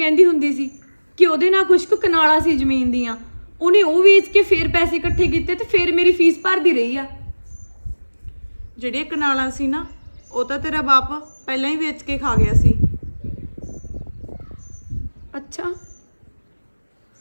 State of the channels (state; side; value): inverted; both; correlation -1.00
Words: ਹੁੰਦੀ ਸੀ ਕਿ ਉਹਦੇ ਨਾਲ ਕੁਝ ਕੁ ਕਨਾਲਾਂ ਸੀ ਜ਼ਮੀਨ ਦੀਆਂ, ਉਹਨੇ ਉਹ ਵੇਚ ਕੇ ਫੇਰ ਪੈਸੇ ਇਕੱਠੇ ਕੀਤੇ ਤੇ ਫੇਰ ਮੇਰੀ ਫੀਸ ਭਰਦੀ ਰਹੀ ਆ। ਜਿਹੜੀਆਂ ਕਨਾਲਾਂ ਸੀ ਨਾ, ਉਹ ਤਾਂ ਤੇਰਾ ਬਾਪ ਪਹਿਲਾਂ ਹੀ ਵੇਚ ਕੇ ਖਾ ਗਿਆ ਸੀ। ਅੱਛਾ,